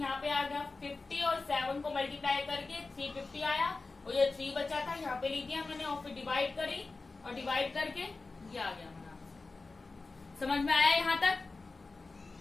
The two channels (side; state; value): right; quieter; 3.7 dB